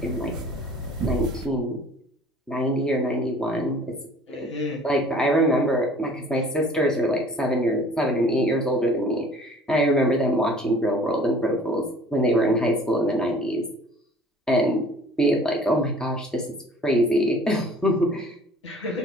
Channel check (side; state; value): both; normal; correlation 0.50